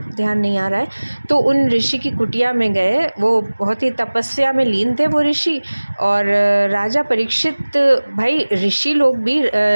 ध्यान नहीं आ रहा है। तो उन ऋषि की कुटिया में गए। वो बहुत ही तपस्या में लीन थे वो ऋषि। और राजा परीक्षित, भाई ऋषि लोग भी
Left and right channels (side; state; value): both; inverted; correlation -1.00